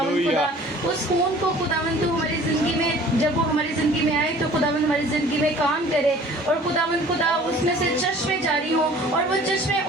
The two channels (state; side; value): normal; both; correlation 0.49